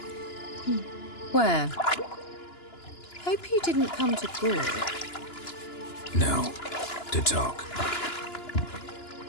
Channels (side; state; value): right; late; 2.9 ms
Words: Where? Hope you didn't come to Gore. No. To talk.